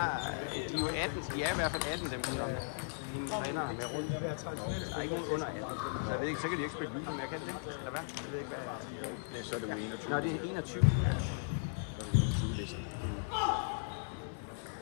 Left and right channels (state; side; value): silent; right; 53 dB below the other